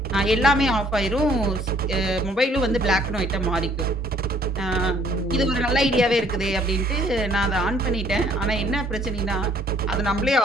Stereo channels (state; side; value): normal; both; correlation 0.61